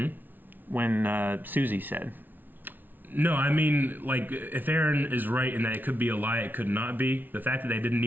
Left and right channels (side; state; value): left; late; 0.087 ms